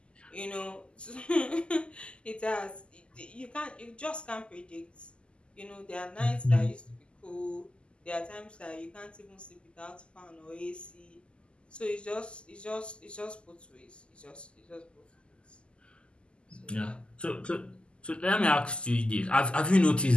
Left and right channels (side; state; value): right; late; 0.051 ms